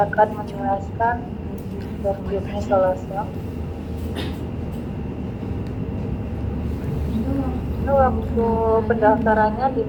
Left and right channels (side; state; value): both; identical; correlation 1.00